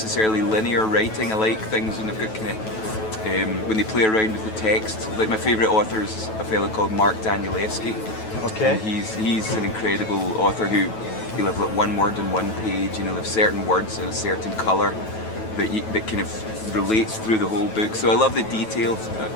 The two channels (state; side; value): late; right; 9.2 ms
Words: linear writing. I like things when they've got kind of when they play around with the text. Like my favourite author is a fellow called Mark Danielewski. Okay. And he's an incredible author he'll have like one word on one page, you know, have certain words in a certain colour that kind of relates through the whole book. So I love the detail